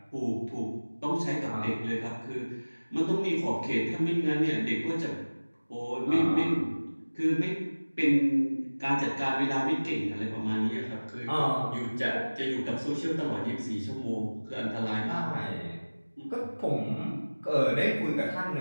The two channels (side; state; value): both; inverted; correlation -1.00